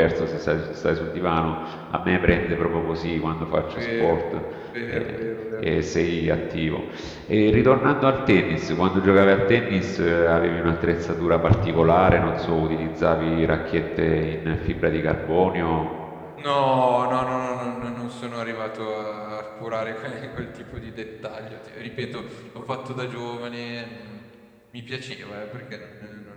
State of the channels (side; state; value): both; identical; correlation 1.00